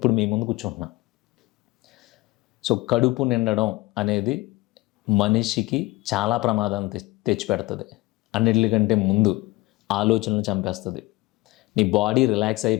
మీ ముందు కూర్చుంటున్నా. సో కడుపు నిండడం అనేది మనిషికి చాలా ప్రమాదాన్ని తెచ్చిపెడుతుంది. అన్నిటికంటే ముందు ఆలోచనలు చంపేస్తుంది, నీ బాడీ రిలాక్స్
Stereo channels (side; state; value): right; quieter; 20.9 dB